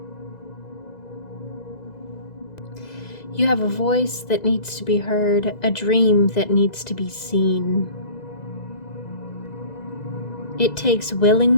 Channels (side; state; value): right; late; 2.0 ms